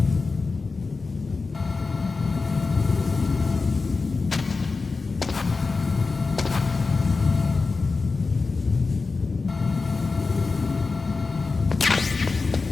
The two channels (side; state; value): right; quieter; 4.1 dB